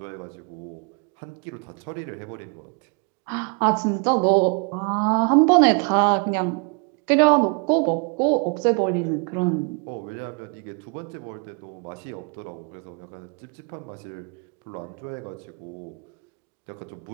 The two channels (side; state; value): left; quieter; 34.0 dB